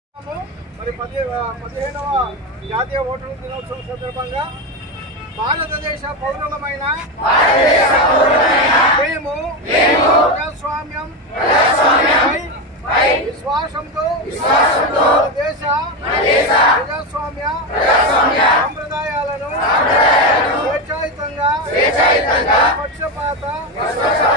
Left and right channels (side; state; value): both; normal; correlation 0.14